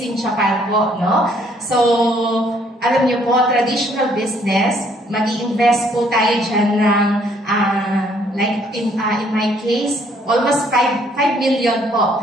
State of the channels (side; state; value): both; normal; correlation 0.65